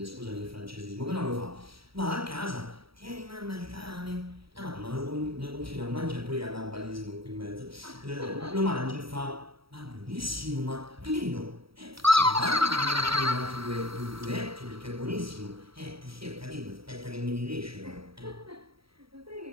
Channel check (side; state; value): left; late; 0.75 ms